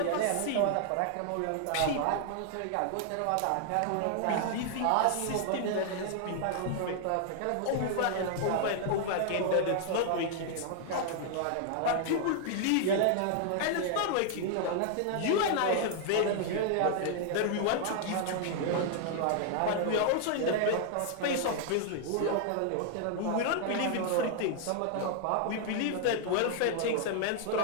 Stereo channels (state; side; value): different; both; correlation 0.00